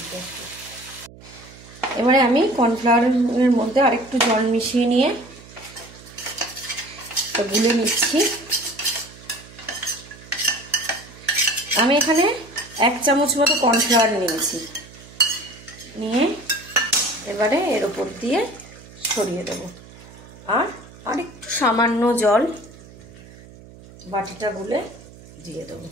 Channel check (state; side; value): noise; right; hum, 20 dB below the sound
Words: এবারে আমি কর্নফ্লাওয়ারের মধ্যে আরেকটু জল মিশিয়ে নিয়ে গুলে নিচ্ছি। আমি এখানে 1 চামচ মতো কর্নফ্লাওয়ার নিয়েছি, নিয়ে এবারে এর উপর দিয়ে ছড়িয়ে দেব। আর একটু সামান্য জল বাটিটা গুলে দিয়ে দেবো।